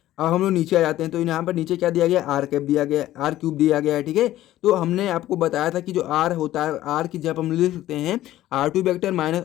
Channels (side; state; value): right; quieter; 14.3 dB